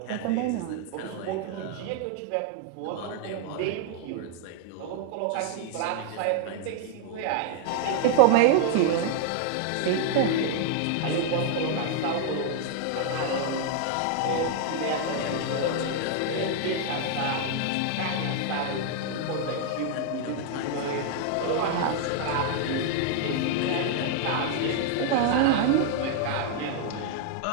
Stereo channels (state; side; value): different; both; correlation 0.00